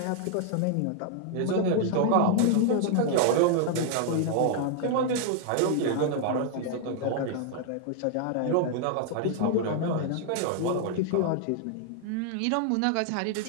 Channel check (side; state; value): both; different; correlation 0.00